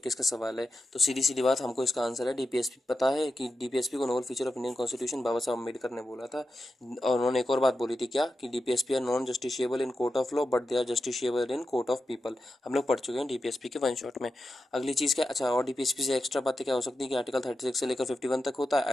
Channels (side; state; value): both; normal; correlation 0.90